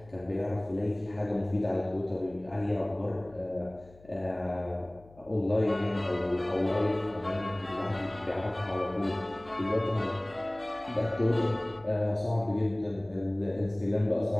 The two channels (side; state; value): left; noise; hum, 24 dB below the sound